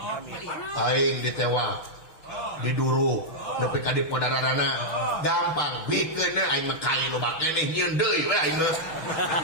Aing ditewa. Diduru nepi ka dipodarana gampang bikeun aing mah kai loba keneh nyieun deui we aing mah.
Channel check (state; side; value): late; right; 6.2 ms